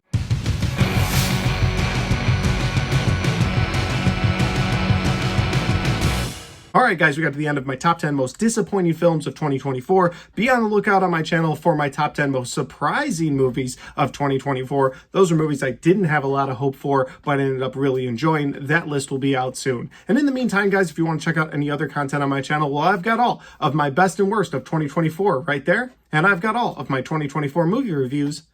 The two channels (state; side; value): identical; both; correlation 1.00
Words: All right, guys, we got to the end of my top 10 most disappointing films of 2024. Be on the lookout on my channel for my top 10 most surprising movies of 2024. Those are movies I didn't have a lot of hope for, but ended up really enjoying. That list will be out soon. And in the meantime, guys, if you want to check out any other content on my channel, well, I've got all of my best and worst of 2024 right there. And I've got all of my 2024 movie reviews